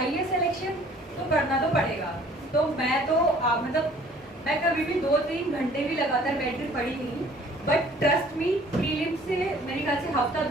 सिलेक्शन तो पढ़ना तो पड़ेगा। तो मैं तो मैं कभी भी 2-3 घंटे भी लगातार बैठ कर पढ़ी नहीं, बट ट्रस्ट मी, प्रीलिम से मेरे ख्याल से हफ्ता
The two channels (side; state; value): both; normal; correlation 0.55